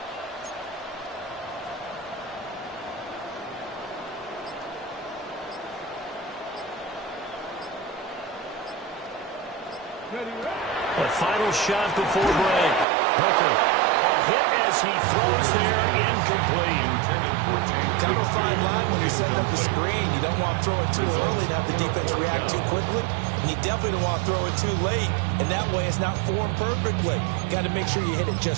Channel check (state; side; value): drops out; left; at 12.9 s